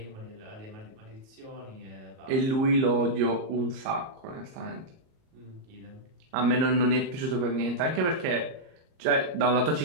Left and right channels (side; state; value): left; late; 38 ms